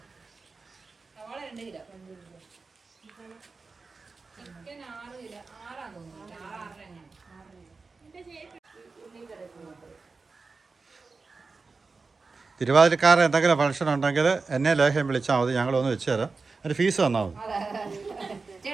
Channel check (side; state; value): left; quieter; 4.2 dB